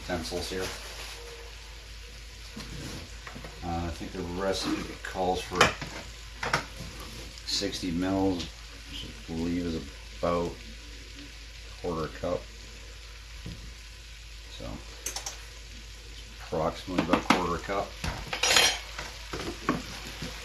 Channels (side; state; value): both; identical; correlation 1.00